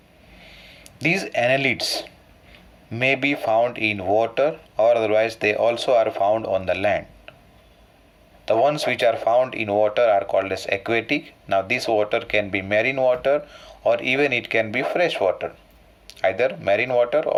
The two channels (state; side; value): identical; both; correlation 1.00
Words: These annelids may be found in water, or otherwise they also are found on the land. The ones which are found in water are called as aquatic. Now this water can be marine water, or even it can be fresh water, either marine water